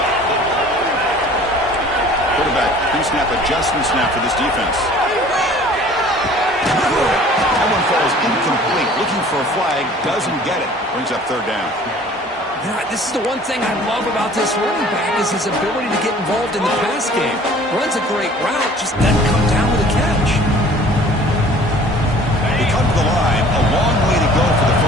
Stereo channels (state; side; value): normal; both; correlation 0.50